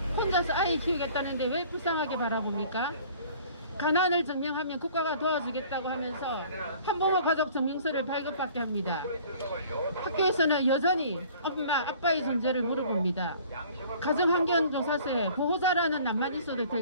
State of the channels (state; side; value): inverted; both; correlation -0.50